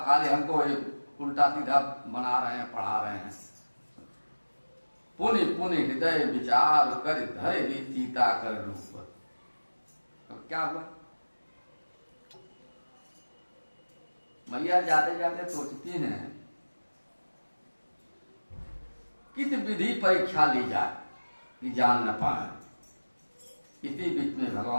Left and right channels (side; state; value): both; inverted; correlation -1.00